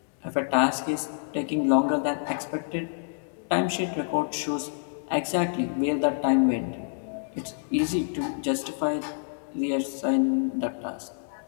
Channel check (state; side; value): silent; right; digital silence